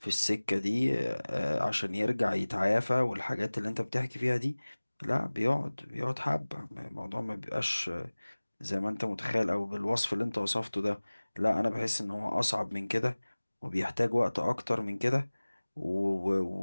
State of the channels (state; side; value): inverted; both; correlation -1.00